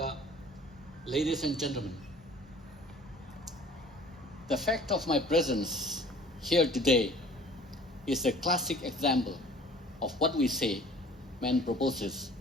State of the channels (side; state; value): both; normal; correlation 0.50